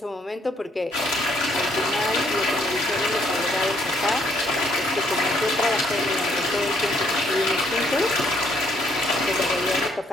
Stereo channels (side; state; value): both; normal; correlation 0.69